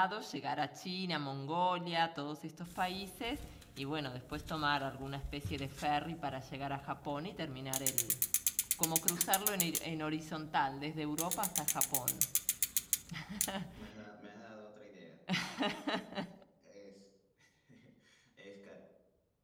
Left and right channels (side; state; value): both; identical; correlation 1.00